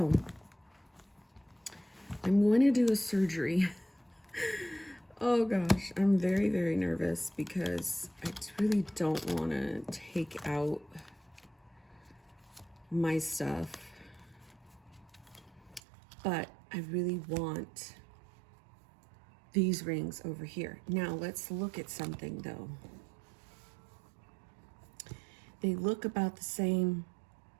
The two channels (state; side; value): drops out; left; at 15.8 s